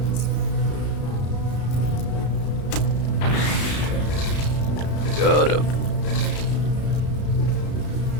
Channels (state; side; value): late; right; 33 ms